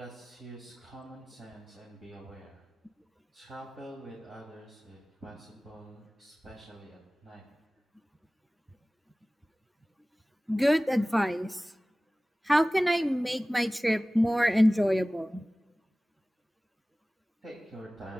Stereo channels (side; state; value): both; normal; correlation 0.98